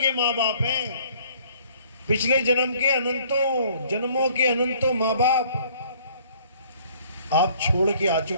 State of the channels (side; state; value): both; inverted; correlation -0.58